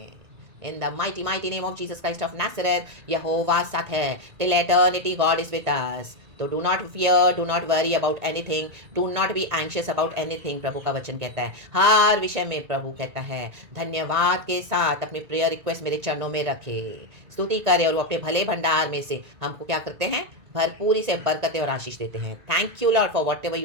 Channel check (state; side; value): late; left; 1.9 ms